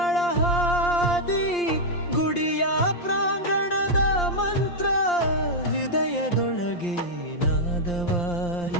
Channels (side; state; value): right; late; 5.7 ms